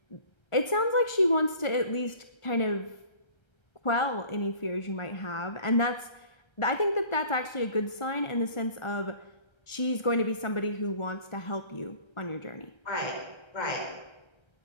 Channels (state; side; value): late; right; 1.4 ms